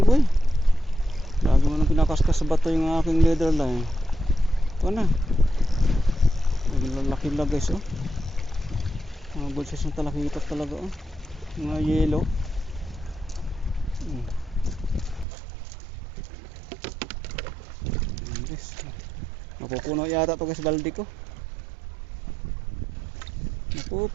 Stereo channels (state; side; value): drops out; left; at 15.2 s